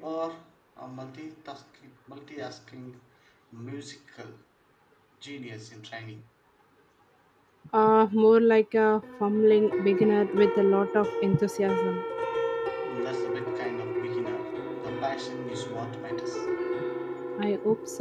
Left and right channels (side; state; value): both; identical; correlation 1.00